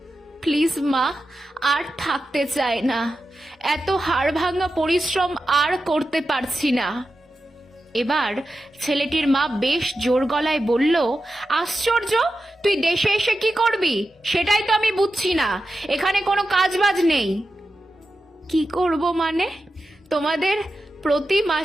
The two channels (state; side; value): normal; both; correlation 0.91